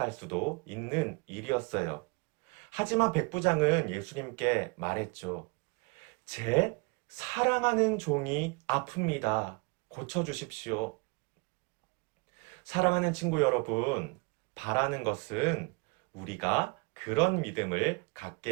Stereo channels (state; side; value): quieter; left; 31.0 dB